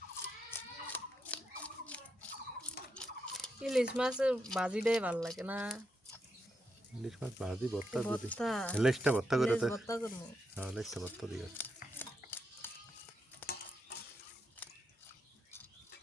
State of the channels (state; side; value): normal; both; correlation 0.83